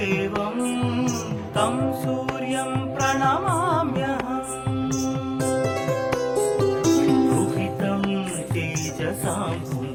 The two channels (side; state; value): both; identical; correlation 1.00